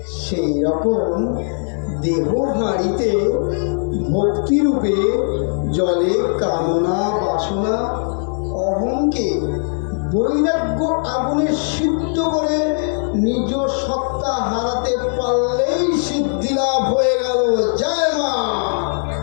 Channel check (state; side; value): silent; right; 67 dB below the other